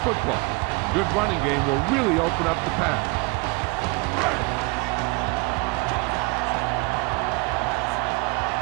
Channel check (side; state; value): left; quieter; 26.7 dB